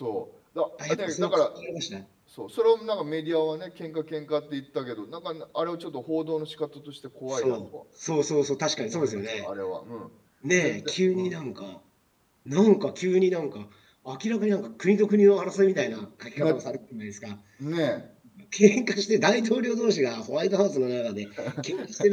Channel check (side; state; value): both; identical; correlation 1.00